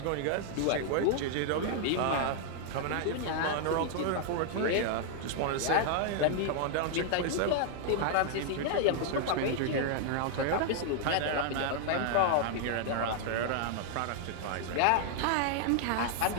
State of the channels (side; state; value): both; different; correlation 0.00